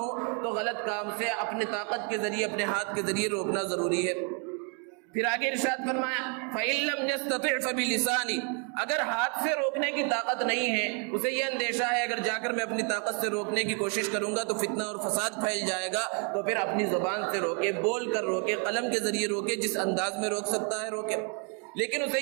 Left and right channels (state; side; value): quieter; left; 37.9 dB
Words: تو غلط کام سے اپنے طاقت کے ذریعے، اپنے ہاتھ کے ذریعے روکنا ضروری ہے۔ پھر آگے ارشاد فرمایا فَإِن لَّمْ يَسْتَطِعْ فَبِلِسَانِهِ، اگر ہاتھ سے روکنے کی طاقت نہیں ہے، اسے یہ اندیشہ ہے اگر جا کر میں اپنی طاقت سے روکنے کی کوشش کروں گا تو فتنہ اور فساد پھیل جائے گا، تو پھر اپنی زبان سے روکے، بول کر روکے، قلم کے ذریعے روکے، جس انداز میں روک سکتا ہے روکے۔ لیکن اسے